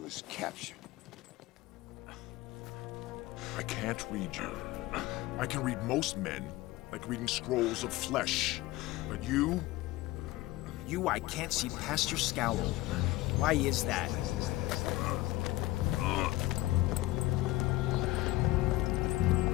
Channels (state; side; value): quieter; right; 18.0 dB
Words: is captured. I can't read you. I can read most men, like reading scrolls of flesh. But you? You, I can't see past your scowl. Why is that?